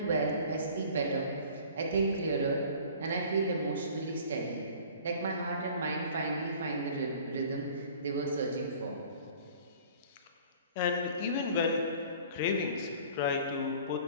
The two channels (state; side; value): inverted; both; correlation -0.48